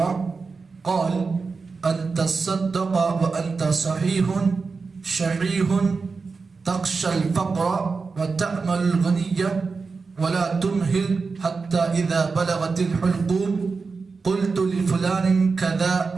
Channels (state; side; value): quieter; left; 4.5 dB